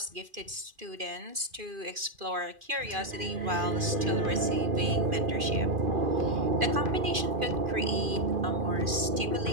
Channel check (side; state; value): left; late; 2.4 ms